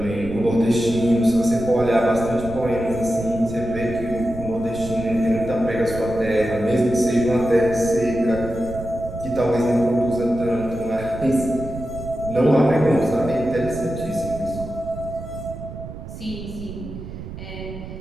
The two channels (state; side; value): noise; right; rumble, 11 dB below the sound